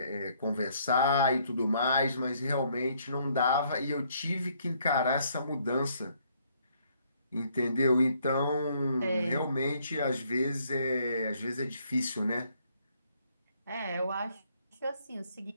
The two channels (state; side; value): inverted; both; correlation -0.67